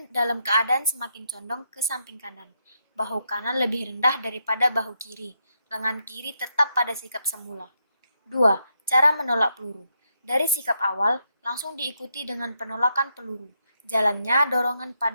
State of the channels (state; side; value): inverted; both; correlation -0.80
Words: dalam keadaan semakin condong ke samping kanan. Bahu kanan lebih rendah daripada bahu kiri. Lengan kiri tetap pada sikap semula. 2. Cara menolak peluru. Dari sikap awal, langsung diikuti dengan penolakan peluru. Jalannya, dorongan